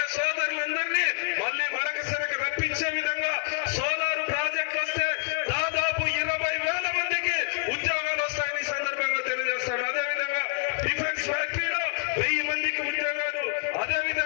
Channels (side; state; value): right; silent; 55 dB below the other